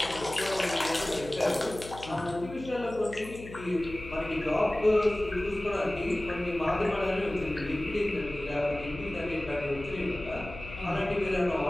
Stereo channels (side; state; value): left; noise; hum, 14 dB below the sound